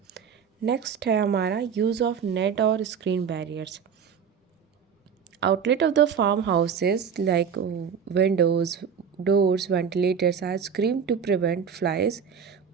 नेक्स्ट है हमारा यूज़ ऑफ नेट और screen barriers. Outlet of the farmhouses like windows, doors, ventilators are screened to prevent flies,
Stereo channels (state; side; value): quieter; left; 7.0 dB